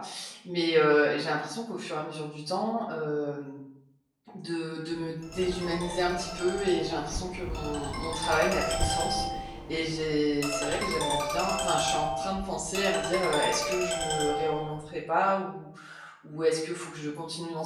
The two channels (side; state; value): both; identical; correlation 1.00